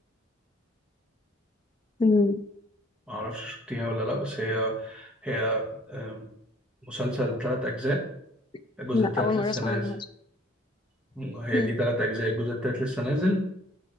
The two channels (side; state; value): both; normal; correlation 0.58